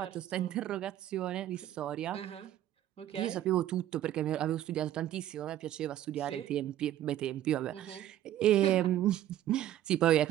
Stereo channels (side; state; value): left; quieter; 12.5 dB